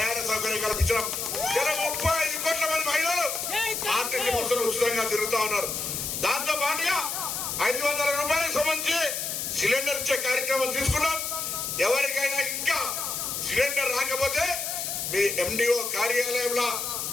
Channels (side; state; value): left; noise; hiss, 3 dB below the sound